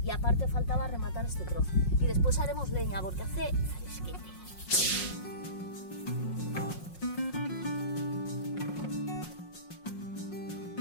Y aparte faltaba rematar este trozo. Y después haremos leña, porque hace fresquete.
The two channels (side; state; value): right; late; 5.5 ms